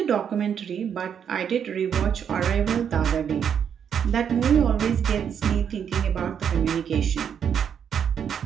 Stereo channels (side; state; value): left; quieter; 8.0 dB